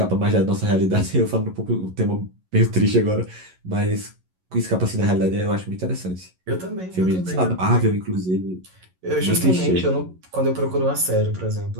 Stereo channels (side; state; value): left; late; 11 ms